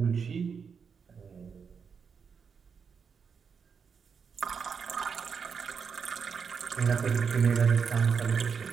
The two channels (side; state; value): left; quieter; 6.2 dB